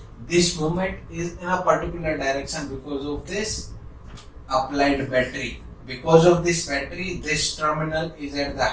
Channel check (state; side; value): identical; both; correlation 1.00